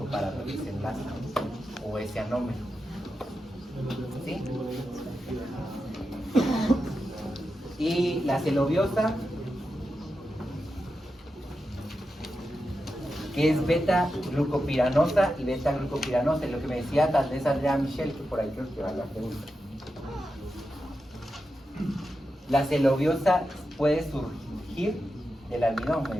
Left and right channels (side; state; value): both; normal; correlation 0.89